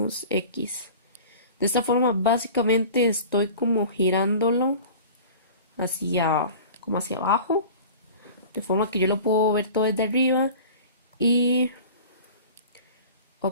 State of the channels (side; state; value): both; inverted; correlation -0.40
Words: x. De esta forma básicamente estoy como girándolo hacia como hacia abajo, de forma que yo lo puedo ver todo desde arriba y